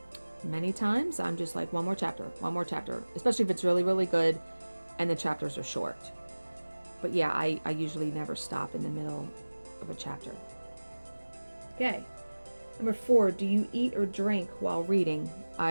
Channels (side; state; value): both; inverted; correlation -1.00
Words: Many times I'm just like, one more chapter, especially if it's really, really good and the chapters are short. But yeah, I usually never stop in the middle of a chapter. Okay. Number 4, do you eat or drink while reading?